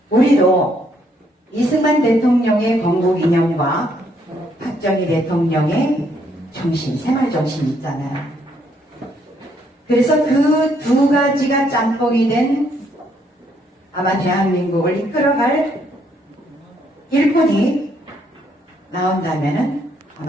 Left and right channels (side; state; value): both; normal; correlation 0.71